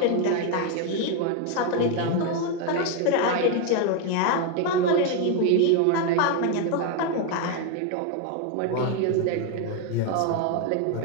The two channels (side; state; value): both; different; correlation 0.01